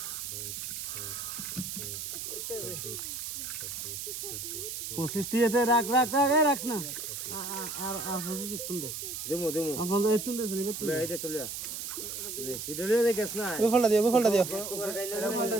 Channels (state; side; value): noise; right; hiss, 6 dB below the sound